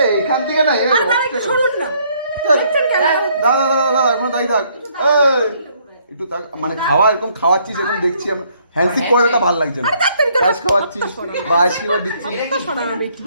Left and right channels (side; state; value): both; inverted; correlation -0.67